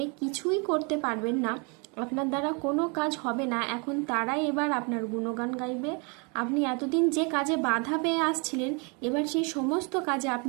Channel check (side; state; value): left; quieter; 33.5 dB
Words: কিছুই করতে পারবেন না, আপনার দ্বারা কোনো কাজ হবে না, এখন তারাই এবার আপনার গুণগান গাইবে। আপনি এতদিন যে কাজে বাধা পেয়ে আসছিলেন, এবার সেই সমস্ত কাজে